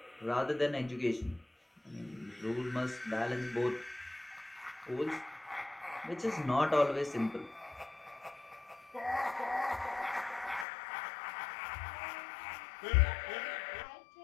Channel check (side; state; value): right; drops out; at 10.7 s